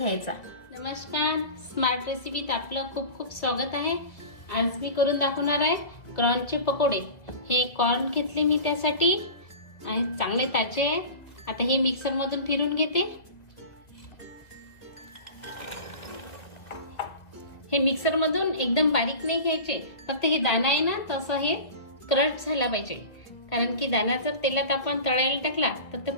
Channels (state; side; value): late; right; 2.3 ms